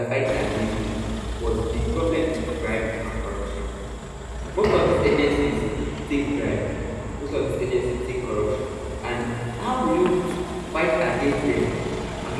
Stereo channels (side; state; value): both; identical; correlation 1.00